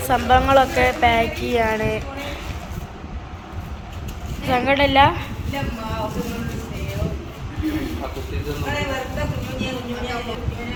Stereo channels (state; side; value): identical; both; correlation 1.00